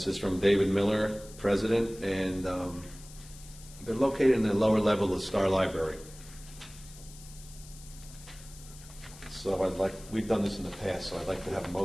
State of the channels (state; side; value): noise; left; hiss, 19 dB below the sound